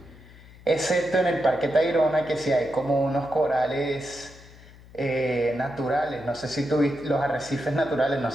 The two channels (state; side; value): noise; left; hum, 21 dB below the sound